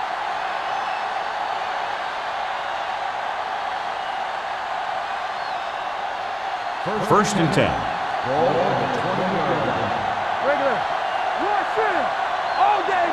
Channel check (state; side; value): identical; both; correlation 1.00